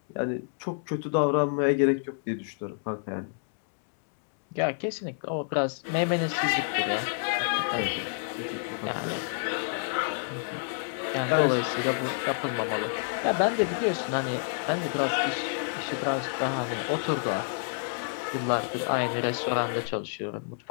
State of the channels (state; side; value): silent; right; digital silence